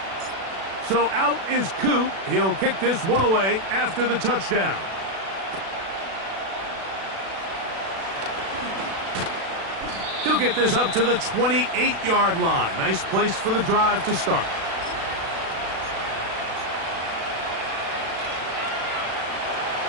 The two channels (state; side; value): late; left; 36 ms